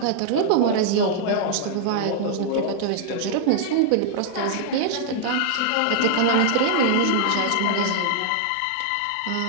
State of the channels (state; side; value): different; both; correlation -0.01